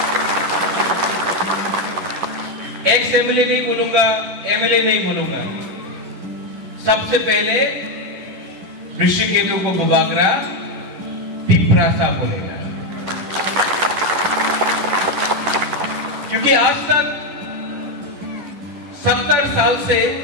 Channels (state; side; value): late; left; 10 ms